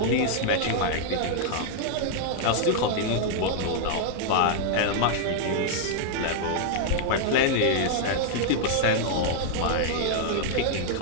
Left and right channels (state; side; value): different; both; correlation -0.01